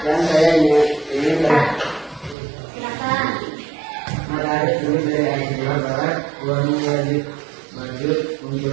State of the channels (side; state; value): left; drops out; at 2.4 s